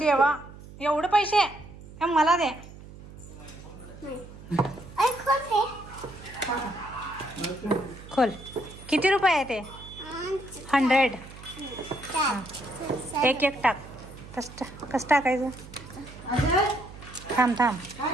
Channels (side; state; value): right; noise; hum, 17 dB below the sound